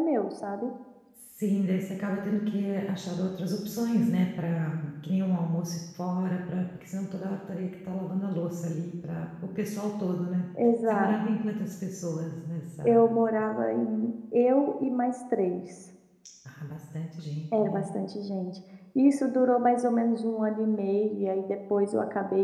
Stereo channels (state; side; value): identical; both; correlation 1.00